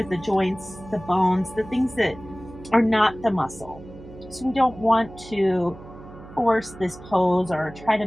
the joints, the bones, the things that are not the muscle. So we don't want to force this pose or try to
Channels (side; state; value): right; noise; hum, 17 dB below the sound